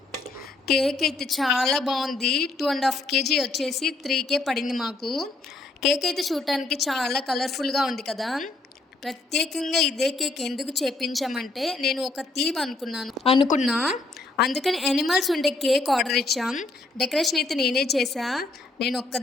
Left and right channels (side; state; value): right; quieter; 3.3 dB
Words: కేక్ అయితే చాలా బాగుంది. 2.5 kg వచ్చేసి 3K పడింది మాకు. కేక్ అయితే చూడటానికి చాలా కలర్ఫుల్గా ఉంది కదా. ప్రత్యేకంగా ఇదే కేక్ ఎందుకు చేపించామంటే నేను ఒక థీమ్ అనుకున్నా అందుకని యానిమల్స్ ఉండే కేక్ ఆర్డర్ ఇచ్చాం. డెకరేషన్ అయితే నేనే చేశా, నేను